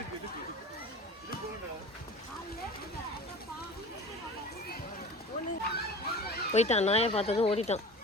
போயிட்டான். நாயை பார்த்ததும் ஓடிட்டான்.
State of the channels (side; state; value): both; normal; correlation 0.37